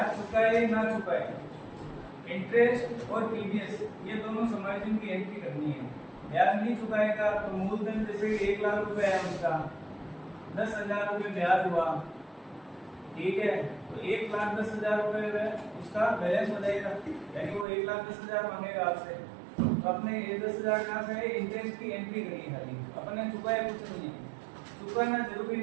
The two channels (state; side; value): drops out; left; at 17.7 s